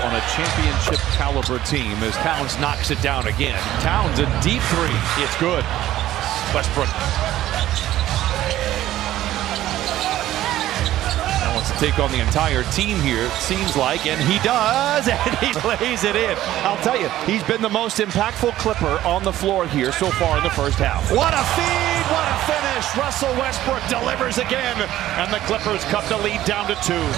on a championship caliber team as Towns knocks it down again. Towns, a deep three. It's good. Westbrook wants to take on the entire team here, it seems like, and he does, and he lays it in. I'll tell you, he's been the most impactful Clipper on the floor here so far in the first half. What a feed, what a finish. Russell Westbrook delivers again, and the Clippers cut the lead down to 2.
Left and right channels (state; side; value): quieter; left; 13.9 dB